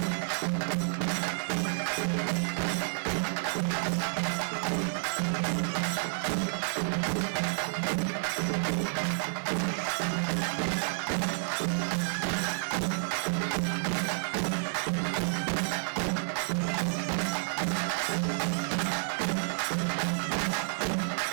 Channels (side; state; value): left; silent; 56 dB below the other